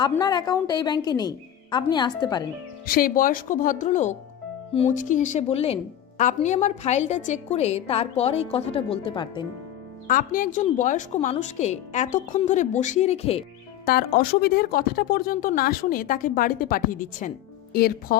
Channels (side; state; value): right; quieter; 11.3 dB